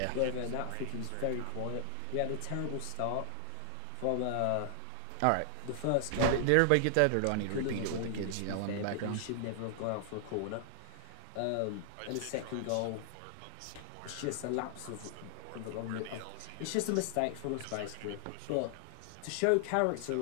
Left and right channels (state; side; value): different; both; correlation 0.00